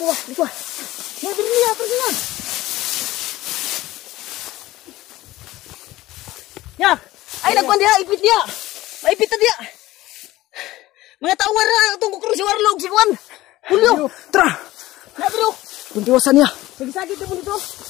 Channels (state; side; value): quieter; right; 17.0 dB